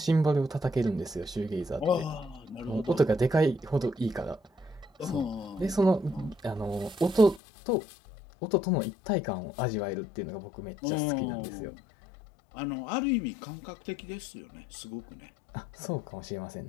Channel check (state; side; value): drops out; right; at 7.4 s